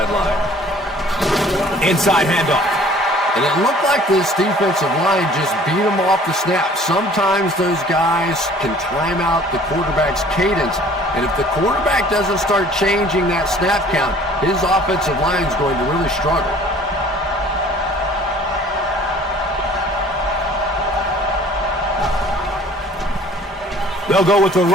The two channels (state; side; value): normal; both; correlation 0.52